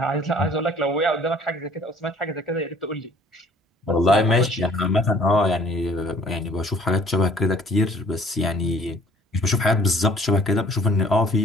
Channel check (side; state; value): both; normal; correlation 0.55